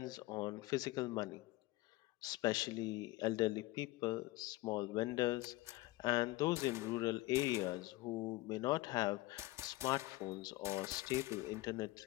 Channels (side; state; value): right; quieter; 19.6 dB